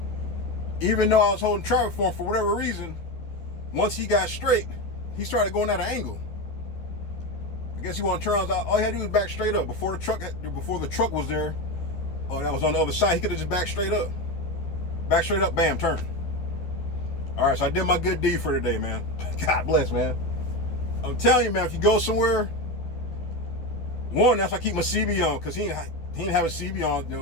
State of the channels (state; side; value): late; right; 12 ms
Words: even though I was holding traffic for whatever reason, once he got straight, he started going at an angle. I guess he wanted to turn around. All he had to do was back straight up. Before the truck was there, that was on the other side, he could have just backed straight up. Back straight up, bam, turn. All right, so I did my good deed for today, man. God bless, man. I'm telling you, man, if you go somewhere, one, that's why I keep my CB on, because he didn't have a CB on, you